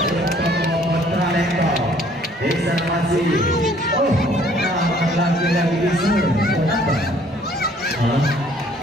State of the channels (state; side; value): normal; both; correlation 0.59